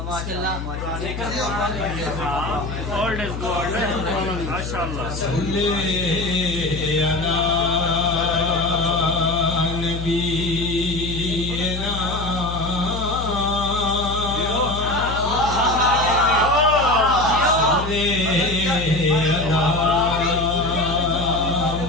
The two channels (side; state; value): left; noise; hum, 6 dB below the sound